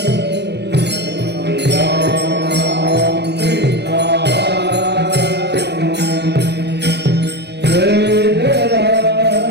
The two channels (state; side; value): late; left; 0.49 ms